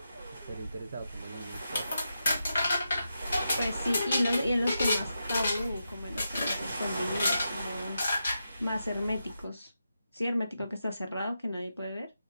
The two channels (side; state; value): both; inverted; correlation -0.87